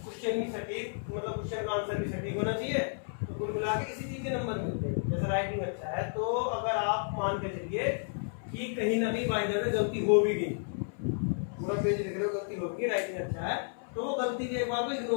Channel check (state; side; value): silent; right; 56 dB below the other